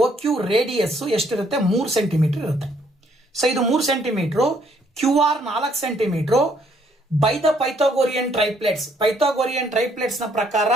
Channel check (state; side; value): normal; both; correlation 0.67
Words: OQ ರೇಡಿಯಸ್ ಎಷ್ಟಿರುತ್ತೆ, 3 ಸೆಂಟಿಮೀಟರ್ ಇರುತ್ತೆ. ಸೊ ಇದು 3 centimetre, QR 4 centimetre. By the Pythagorean triplets ನ ಪ್ರಕಾರ